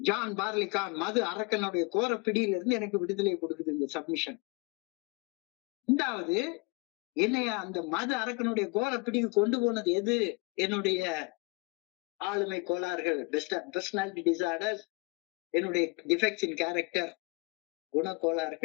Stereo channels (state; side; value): quieter; right; 28.6 dB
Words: பார்லிகான் மது அரக்கனுடைய கோர பிடியில இருந்து எனக்கு விடுதலை கொடுக்குது இந்த சப்மிஷன். 2வது என்னைய அந்த மது அரக்கனுடைய கோர பிடிக்கு கொண்டு போனது எது? என்னுடைய ஆளுமை கோளாறுகள், பர்சனாலிட்டி டிசார்டர்ஸ், என்னுடைய டிஃபெக்ட்ஸ் இன் கேரக்டர்,